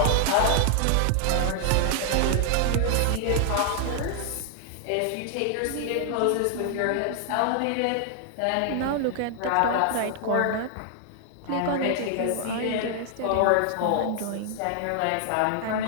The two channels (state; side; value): different; both; correlation 0.00